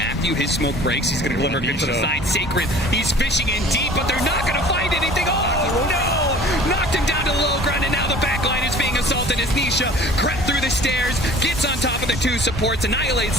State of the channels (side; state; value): both; normal; correlation 0.47